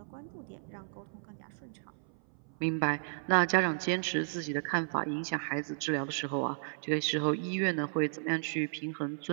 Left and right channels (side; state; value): left; silent; 55 dB below the other